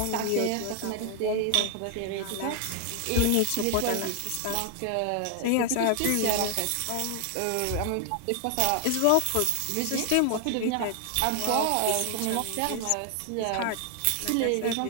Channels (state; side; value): different; both; correlation 0.00